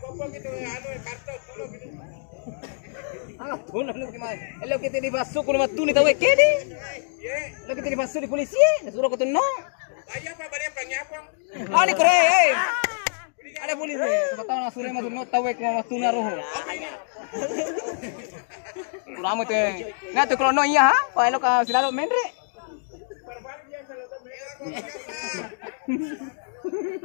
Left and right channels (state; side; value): silent; right; digital silence